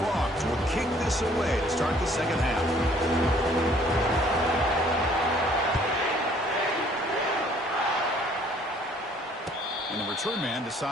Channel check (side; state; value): both; normal; correlation 0.59